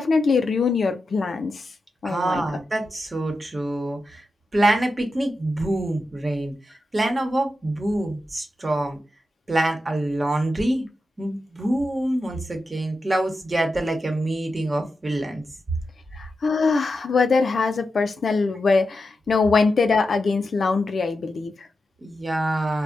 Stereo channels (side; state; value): both; normal; correlation 0.89